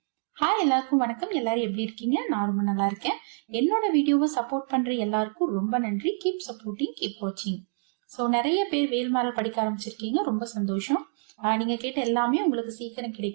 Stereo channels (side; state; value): left; silent; 60 dB below the other